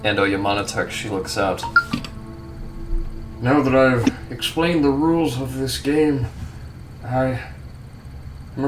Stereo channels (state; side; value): identical; both; correlation 1.00